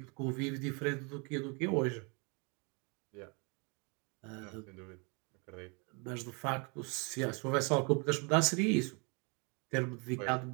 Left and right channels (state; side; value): quieter; left; 32.9 dB